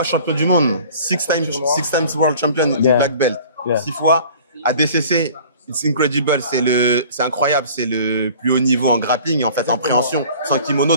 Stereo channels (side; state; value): both; inverted; correlation -0.47